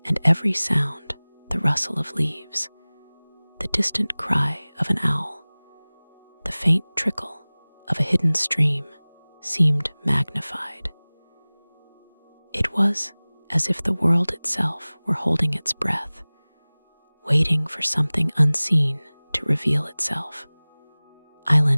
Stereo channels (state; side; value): inverted; both; correlation -1.00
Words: and every sound, the rustle of leaves, the distant cry of an owl, the faint trickle of a hidden stream, seemed magnified. It was as if the world itself were holding its breath, waiting for something unseen to reveal itself.